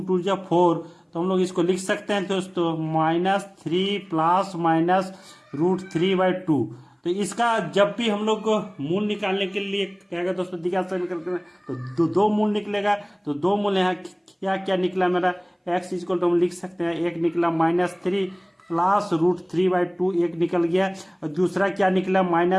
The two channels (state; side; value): identical; both; correlation 1.00